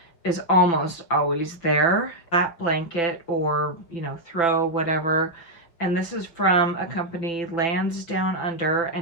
is almost always there. That blanket or, you know, throw, whatever. And this is from a company, Lands Down Under,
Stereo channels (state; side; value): late; right; 5.8 ms